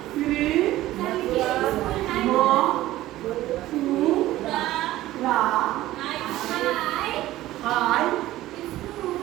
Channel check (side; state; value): left; quieter; 15.6 dB